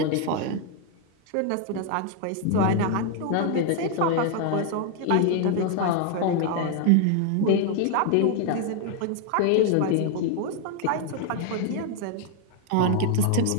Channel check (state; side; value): different; both; correlation 0.00